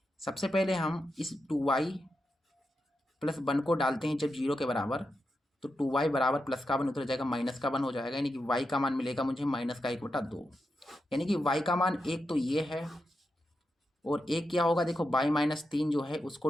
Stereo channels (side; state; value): both; normal; correlation 0.87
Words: सबसे पहले हम इस 2y + 1 को डालते हैं जब 0 के बराबर, तो 2y बराबर प्लस का 1 उतर जाएगा, माइनस का 1 हो जाएगा, यानी कि y का मान मिलेगा मुझे -1/2, यानी कि y का मान 1 तो ये है, और एक क्या होगा देखो y-3 जो है उसको